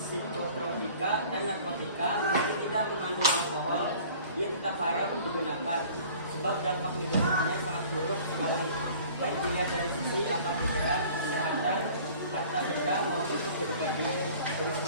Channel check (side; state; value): both; inverted; correlation -0.48